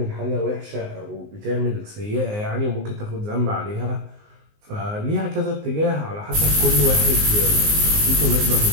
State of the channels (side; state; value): left; late; 19 ms